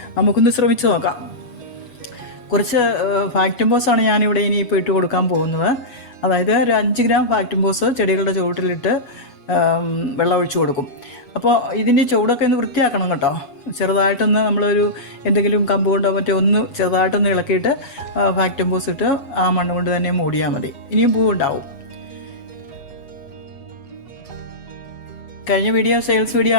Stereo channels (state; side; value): late; right; 8.1 ms